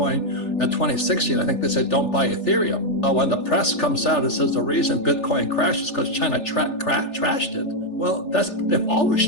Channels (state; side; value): late; right; 3.4 ms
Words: And 2016, I think they said, don't buy Ethereum. When the press comes out and says the reason Bitcoin crashed is because China trashed it. Well, they've always